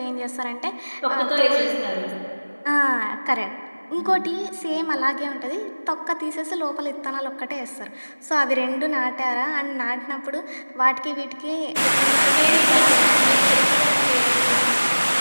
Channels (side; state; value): both; inverted; correlation -1.00